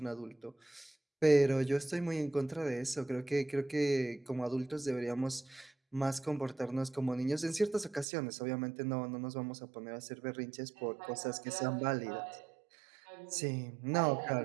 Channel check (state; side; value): drops out; left; at 8.1 s